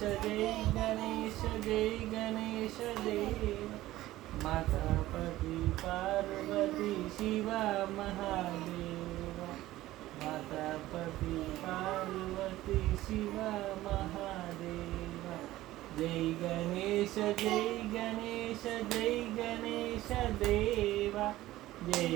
జై గణేష జై గణేష దేవ. మాతాపతి పార్వతి శివ మహాదేవ. మాతాపతి పార్వతి శివ మహాదేవ. జై గణేష జై గణేష జై గణేష దేవ. జై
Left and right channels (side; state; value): left; quieter; 16.0 dB